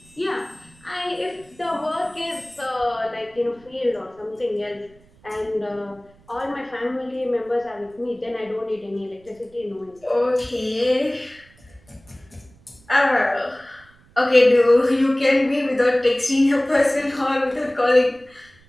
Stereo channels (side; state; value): right; noise; rumble, 29 dB below the sound